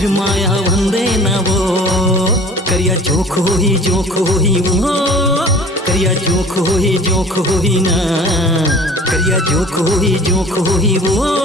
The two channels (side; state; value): both; normal; correlation 0.46